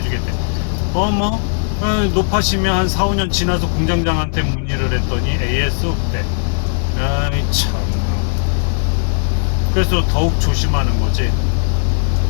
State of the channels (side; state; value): right; silent; 61 dB below the other